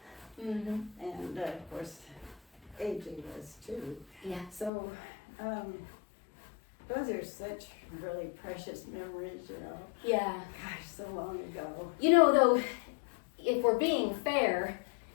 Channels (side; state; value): right; drops out; at 4.7 s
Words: Mm-hmm. And of course, AJ was too. Yeah. So, those are such really precious memories, Yeah. Gosh, so long ago. Though, if we're being fair,